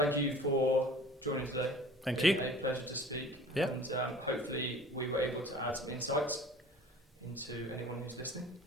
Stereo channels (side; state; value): both; normal; correlation 0.44